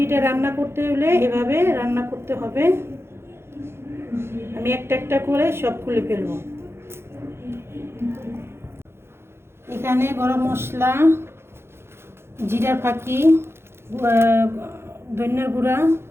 রান্না করতে হলে এভাবে রান্না করতে হবে। আমি একটা একটা করে সব খুলে ফেলবো। এখানে গরম মশলা, জিরার ফাঁকি, ধনিয়ার গুঁড়া,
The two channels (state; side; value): late; left; 0.12 ms